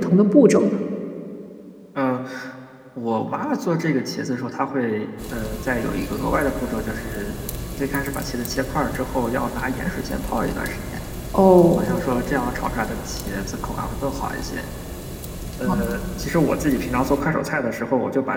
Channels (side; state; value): both; identical; correlation 1.00